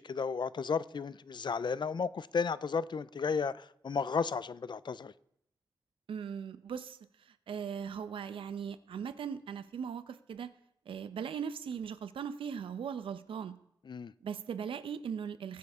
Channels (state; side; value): normal; both; correlation 0.59